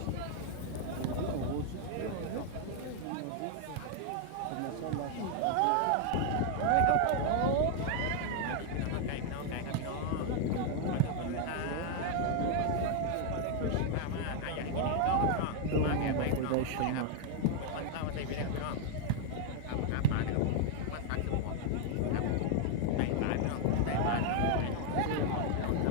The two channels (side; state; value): both; different; correlation 0.00